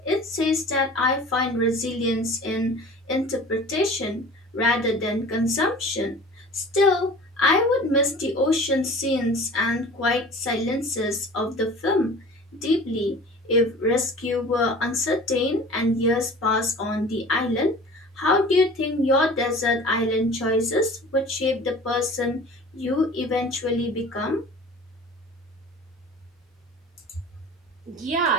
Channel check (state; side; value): normal; both; correlation 0.42